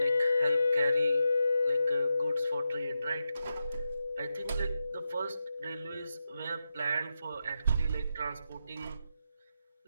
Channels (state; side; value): inverted; both; correlation -0.88